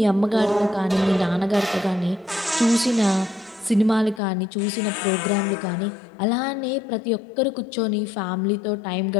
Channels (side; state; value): right; drops out; at 4.2 s